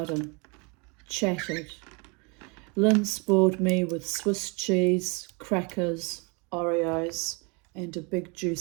chatted. Lynn spoiled me with Swiss cheese, crackers, Oreos, and a big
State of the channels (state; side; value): quieter; left; 31.0 dB